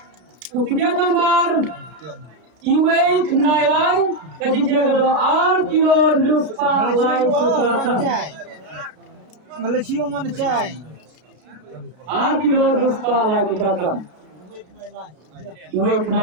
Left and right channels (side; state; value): left; late; 33 ms